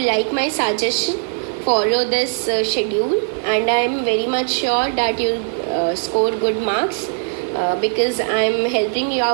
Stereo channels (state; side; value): silent; left; digital silence